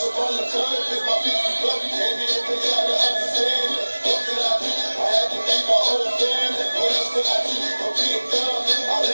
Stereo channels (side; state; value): both; inverted; correlation -1.00